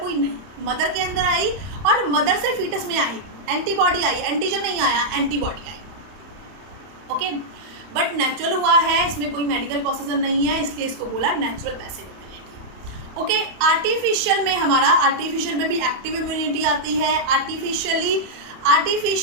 हुई? नहीं, मदर के अंदर आई और मदर से फीटस में आई, एंटीबॉडी आई, एंटीजन नहीं आया, antibody I. Okay, but natural हुआ है, इसमें कोई मेडिकल प्रोसीजर नहीं है, इसलिए इसको बोला natural passive immunity. Okay, artificial में भी एक्टिव इम्यूनिटी आती है।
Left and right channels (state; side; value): late; left; 31 ms